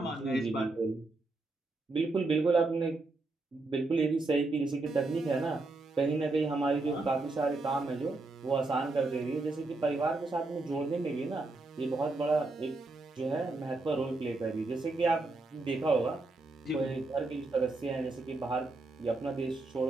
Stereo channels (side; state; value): left; quieter; 3.3 dB